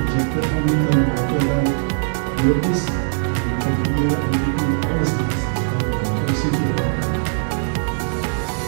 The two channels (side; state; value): left; silent; 65 dB below the other